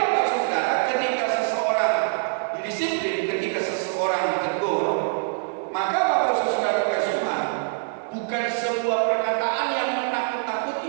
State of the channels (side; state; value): left; silent; 62 dB below the other